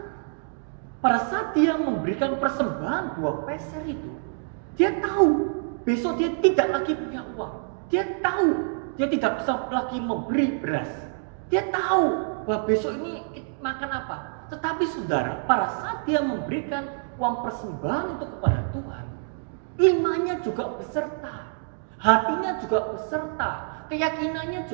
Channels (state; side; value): silent; left; digital silence